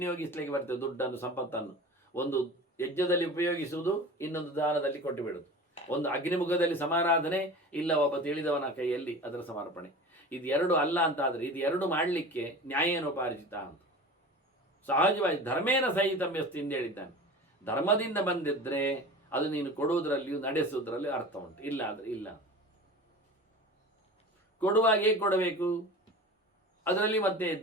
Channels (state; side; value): normal; both; correlation 0.36